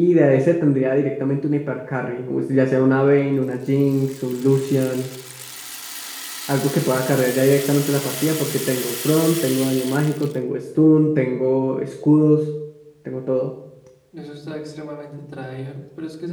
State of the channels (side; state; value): both; identical; correlation 1.00